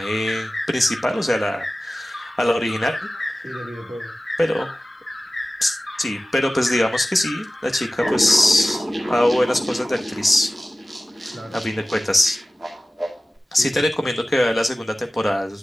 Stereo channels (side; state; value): both; normal; correlation 0.96